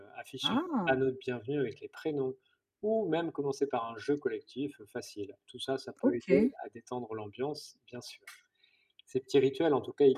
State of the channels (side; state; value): both; identical; correlation 1.00